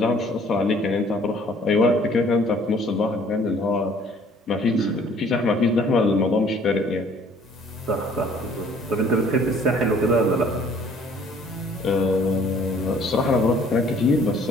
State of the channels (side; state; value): both; normal; correlation 0.57